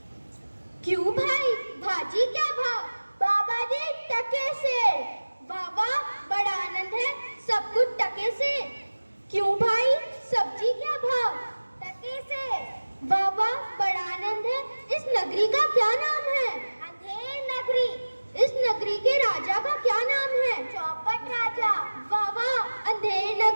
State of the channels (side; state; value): both; inverted; correlation -1.00